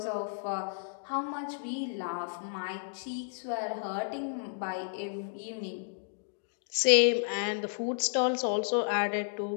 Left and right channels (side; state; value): right; silent; digital silence